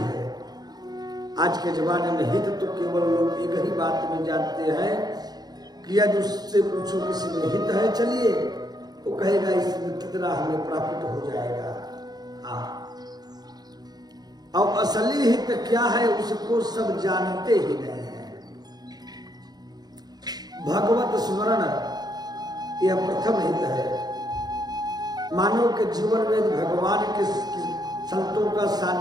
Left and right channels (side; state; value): left; late; 0.19 ms